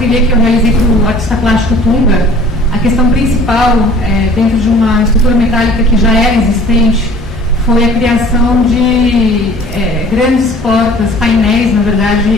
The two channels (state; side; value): normal; both; correlation 0.50